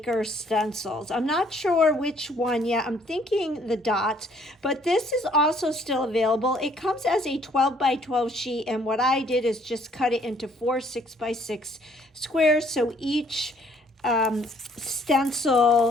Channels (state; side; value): normal; both; correlation 0.63